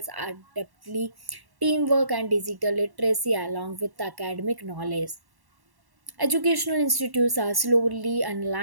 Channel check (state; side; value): late; left; 1.1 ms